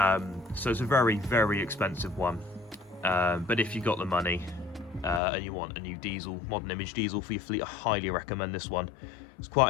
it's a very, very expensive one. But if you got the money and you want a new diesel, modern image diesel for your fleet, I highly recommend this one. It's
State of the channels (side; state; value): right; drops out; at 5.2 s